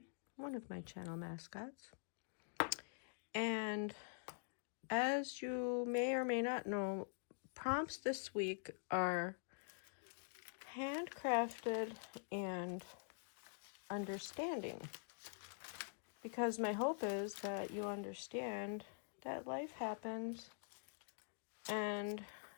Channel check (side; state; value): right; silent; digital silence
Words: one of my channel mascots. And as you may or may not know, prompts this week are handcrafted and understanding. Because my hope is that you understand that life happens, and